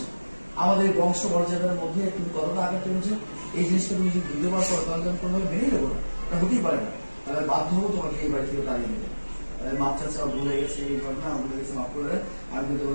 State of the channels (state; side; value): inverted; both; correlation -1.00